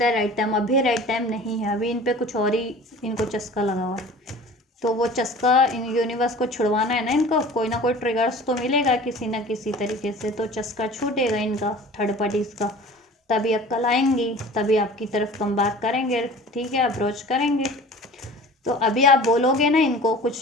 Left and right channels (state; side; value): normal; both; correlation 0.42